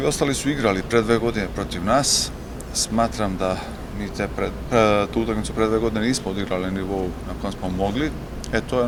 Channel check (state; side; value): identical; both; correlation 1.00